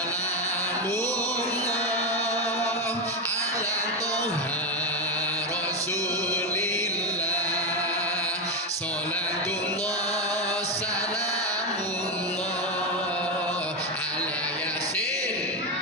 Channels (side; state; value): both; normal; correlation 0.10